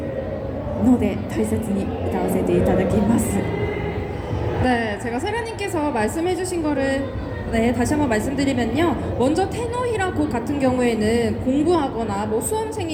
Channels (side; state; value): both; identical; correlation 1.00